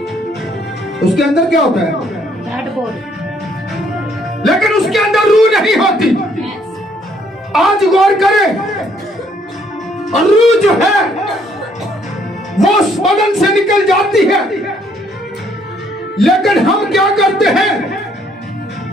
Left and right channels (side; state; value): both; normal; correlation 0.66